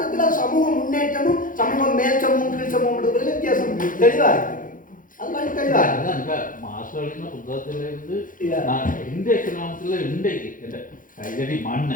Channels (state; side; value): late; right; 0.39 ms